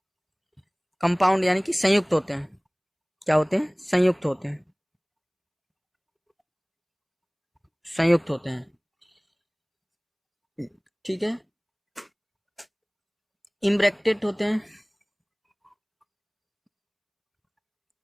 कंपाउंड यानी कि संयुक्त होते हैं। क्या होते हैं? संयुक्त होते हैं, संयुक्त होते हैं। ठीक है। इम्ब्रैकेटेड होते हैं,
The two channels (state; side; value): identical; both; correlation 1.00